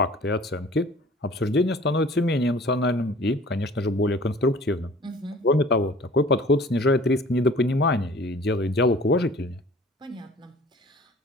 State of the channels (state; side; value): normal; both; correlation 0.48